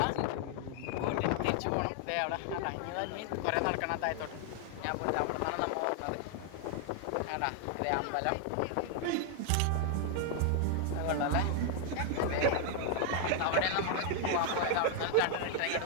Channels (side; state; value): both; different; correlation 0.00